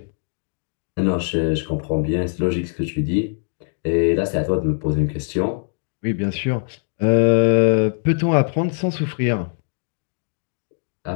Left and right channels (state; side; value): silent; right; 64 dB below the other